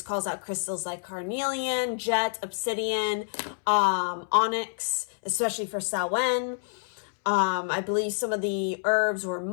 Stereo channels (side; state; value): right; silent; 60 dB below the other